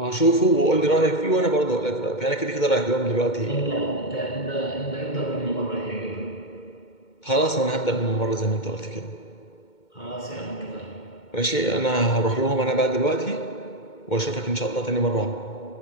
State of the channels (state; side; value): late; right; 2.2 ms